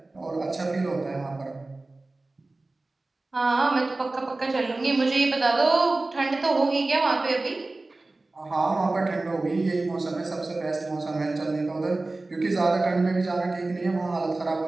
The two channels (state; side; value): quieter; left; 3.1 dB